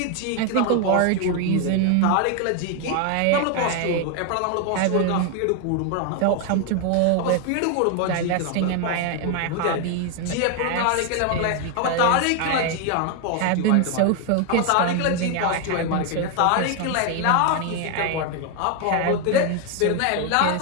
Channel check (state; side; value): different; both; correlation 0.01